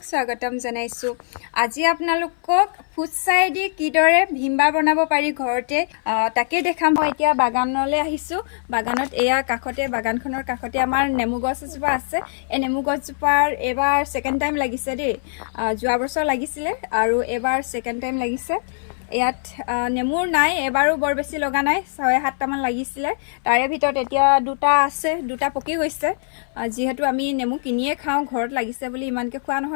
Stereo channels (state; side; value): silent; right; 61 dB below the other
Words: স্বাগতম জনাইছোঁ। আজি আপোনালোকক ফুটছাই দি কিদৰে ভীমবাৰ বনাব পাৰি ঘৰতে তাকে দেখাম। মই এতিয়া বাগানলৈ আহিছোঁ। বাগানত এয়া কাষতে, বাগানখনৰ কাষতে আমাৰ নেমু গছ এজোপা আছে। এই নেমু গছজোপাৰ এইবাৰ ছেকেণ্ড টাইম লাগিছে দেই। যোৱা বছৰ লাগিছিলে আৰু এইবাৰ ছেকেণ্ড টাইম লাগিছে। ইয়াত নেমুৰ নাই, এবাৰো বৰ বেছি লগা নাই, 6-7টামান লাগিছিলে। তাৰে ভিতৰত এতিয়া দুটা আছে, দুটা পকি গৈছে। যিহেতু আমি নেমু কিনিয়ে খাওঁ, ঘৰত লাগিছে বুলি ইমানকৈ খোৱা